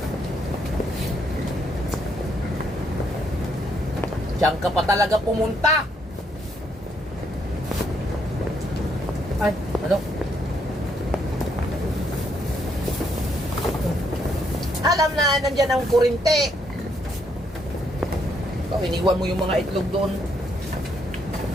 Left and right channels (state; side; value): normal; both; correlation 0.73